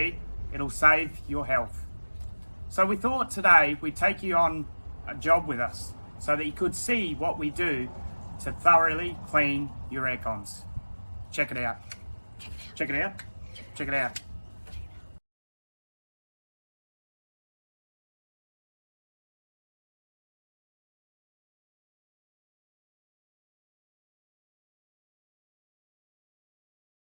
it'll save your health. So we thought today we'd take you on a job with us so that you could see what we do to thoroughly clean your aircons. Check it out. Check it out. Check it out.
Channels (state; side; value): inverted; both; correlation -1.00